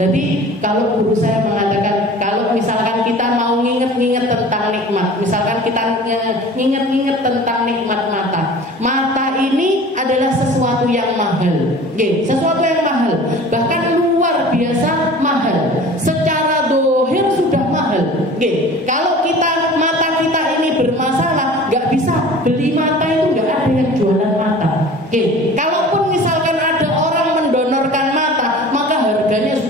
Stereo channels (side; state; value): both; normal; correlation 0.42